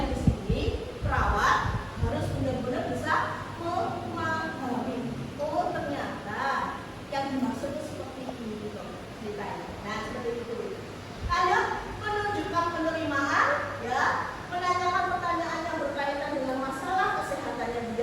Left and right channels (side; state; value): both; identical; correlation 1.00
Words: di sini perawat harus benar-benar bisa memahami. Oh ternyata yang dimaksud itu seperti ini loh ceritanya. Nah seperti itu. Ayo menunjukkan penerimaan, ya, menanyakan pertanyaan yang berkaitan dengan masalah kesehatannya